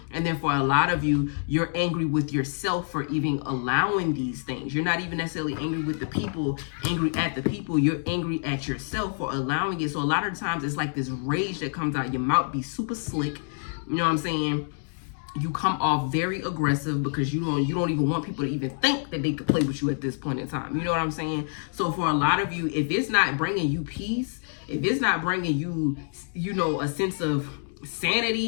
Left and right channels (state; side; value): silent; right; digital silence